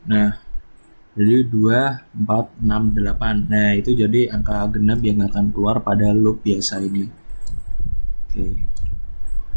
Nah, jadi 2, 4, 6, 8. Nah, itu jadi angka genap yang akan keluar pada loop biasa ini. Oke.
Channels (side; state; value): both; inverted; correlation -1.00